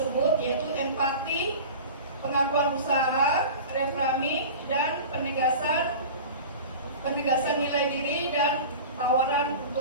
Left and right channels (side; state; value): both; inverted; correlation -0.35